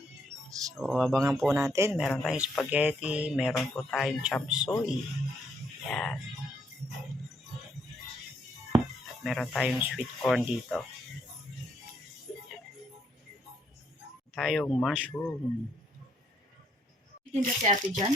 So, abangan po natin. Meron tayong spaghetti. Meron po tayong chop suey. Yan. At meron tayong sweet corn dito. Tayong mushroom. Tinda si ate dyan?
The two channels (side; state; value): both; normal; correlation 0.72